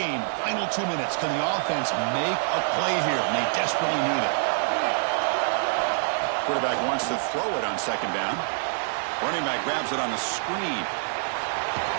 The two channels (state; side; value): silent; left; 61 dB below the other